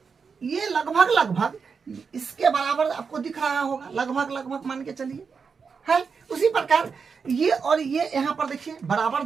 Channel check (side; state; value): left; quieter; 5.6 dB